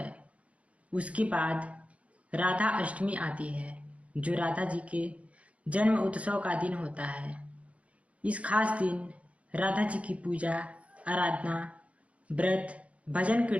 उसके बाद राधा अष्टमी आती है जो राधा जी के जन्म उत्सव का दिन होता है। इस खास दिन राधा जी की पूजा, आराधना, व्रत, भजन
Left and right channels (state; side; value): late; left; 0.064 ms